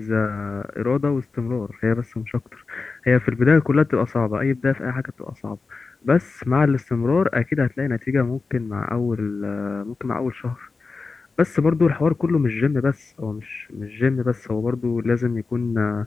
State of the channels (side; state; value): right; quieter; 4.2 dB